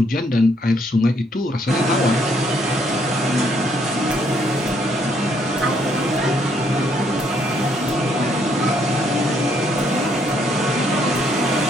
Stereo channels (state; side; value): normal; both; correlation 0.70